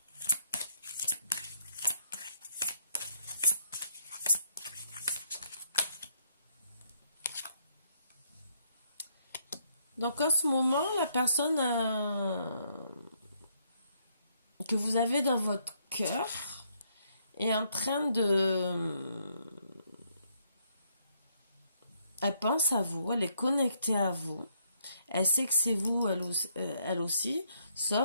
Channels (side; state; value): both; inverted; correlation -0.72